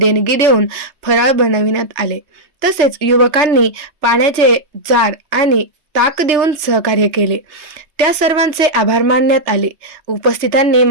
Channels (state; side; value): late; left; 3.2 ms